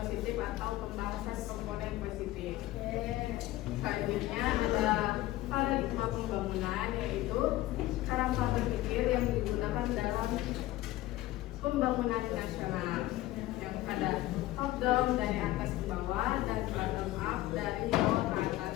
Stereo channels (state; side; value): quieter; right; 16.1 dB